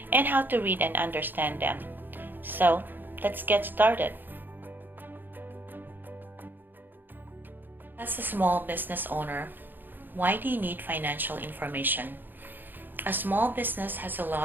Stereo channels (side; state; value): left; late; 0.092 ms